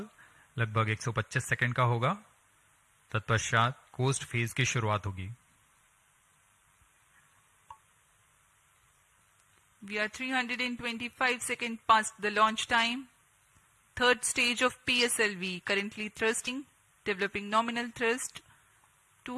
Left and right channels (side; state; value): both; identical; correlation 1.00